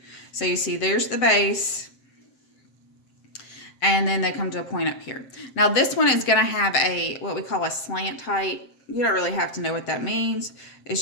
So you see there's the base, and then they come to a point up here. Now this one is going to have what we call a slant height. You don't really have to know what that means.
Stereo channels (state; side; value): late; right; 7.6 ms